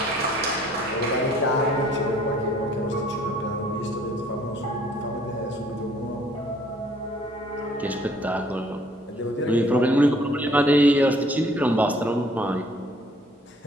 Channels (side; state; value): both; normal; correlation 0.59